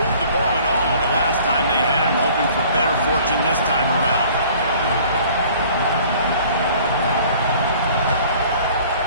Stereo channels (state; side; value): inverted; both; correlation -0.52